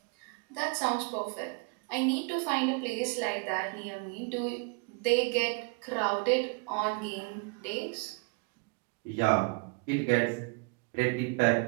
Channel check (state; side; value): quieter; left; 33.5 dB